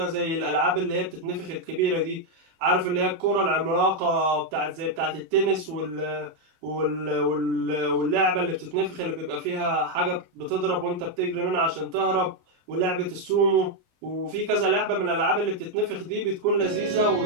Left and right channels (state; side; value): late; left; 24 ms